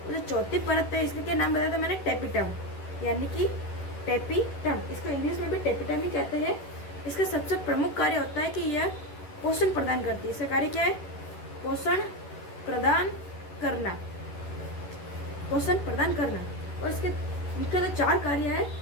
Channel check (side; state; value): right; late; 11 ms